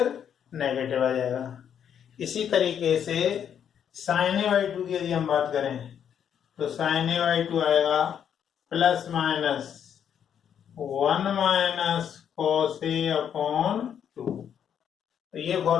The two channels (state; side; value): quieter; right; 8.7 dB